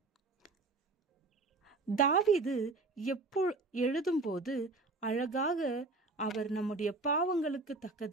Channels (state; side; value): quieter; left; 3.4 dB